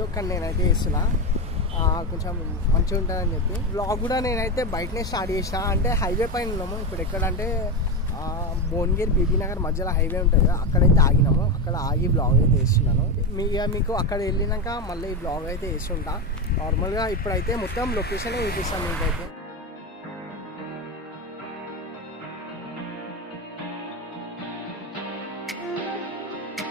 కానీ నేనైతే వేస్తున్నా, కొంచెం మంచిగా ఉంటుందని చెప్పి. బ్లాగ్ కూడా నేనైతే బయటనే స్టార్ట్ చేసిన. అంటే హైవే పైన ఉన్నాము ఇప్పుడు. ఎక్కడంటే భువనగిరి బీబీ నగర్ మధ్యలో హైవే ఉంటుంది కదా, అక్కడైతే ఆగినాము. అక్కడ ఆగి బ్లాగ్ అయితే వేస్తున్నాను. మీకు అక్కడ వెళ్ళినాక మళ్ళీ ఈ బ్లాగ్ అయితే వేస్తుంటా. నార్మల్గా ఇప్పుడైతే మొత్తం లొకేషన్ చూపిస్తాను మీకైతే.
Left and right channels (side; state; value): both; normal; correlation 0.14